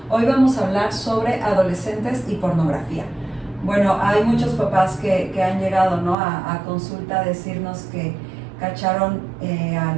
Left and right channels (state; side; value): drops out; left; at 6.2 s